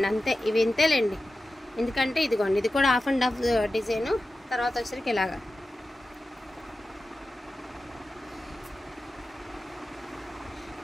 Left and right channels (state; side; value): normal; both; correlation 0.93